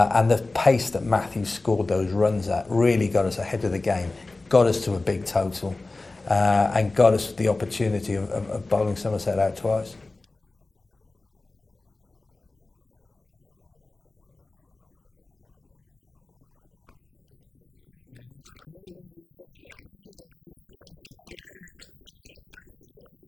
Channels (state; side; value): quieter; right; 3.3 dB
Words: the pace that Matthew scored those runs at really got us ahead of the game, got us to a big total. And got us the opportunity of bowling Somerset out twice. Oh, that's pulled away. It's a wonderful shot. That's a big 6